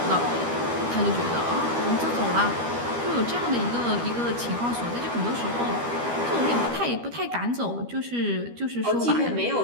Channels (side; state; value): left; late; 13 ms